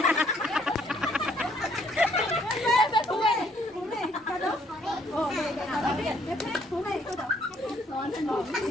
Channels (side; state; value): both; normal; correlation 0.66